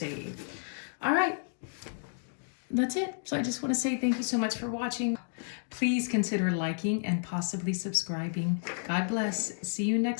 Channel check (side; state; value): right; silent; digital silence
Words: All right, that's it. So I just want to say thank you so much for watching. Please consider liking and possibly subscribing. God bless. See you